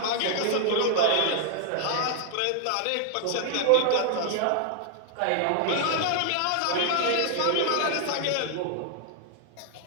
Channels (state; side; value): different; both; correlation -0.01